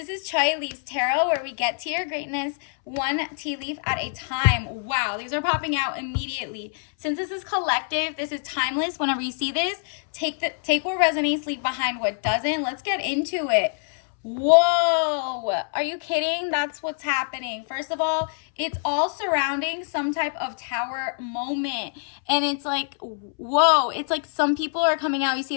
is Choi Leaves Tarot, where we get to your greatness one tea leaf at a time. Wow, these are popping out immediately. Since this is collective, this is timeless. Whenever you see this, take what resonates, leave behind what doesn't. Let's get into it. Whoa, are you kidding? That's what's happening. First of all, it's all surrounding some type of tower moment. And it's like, whoa, it's like some people are coming out. You see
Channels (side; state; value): right; silent; 62 dB below the other